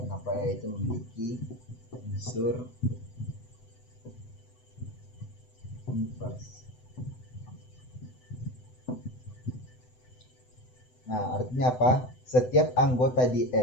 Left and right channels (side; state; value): right; late; 7.9 ms